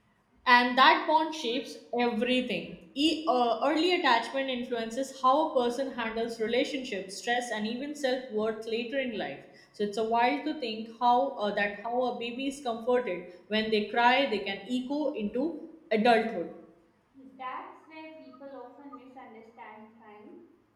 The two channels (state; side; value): identical; both; correlation 1.00